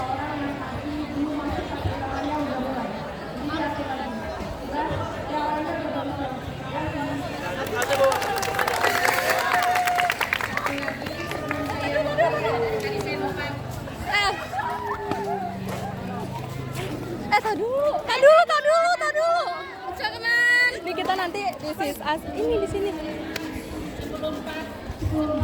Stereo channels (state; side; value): identical; both; correlation 1.00